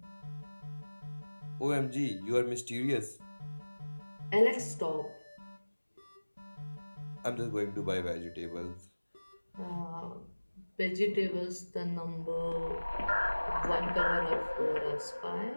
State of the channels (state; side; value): inverted; both; correlation -1.00